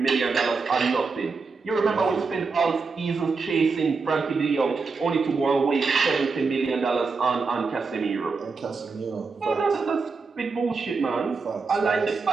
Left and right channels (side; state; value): left; quieter; 4.5 dB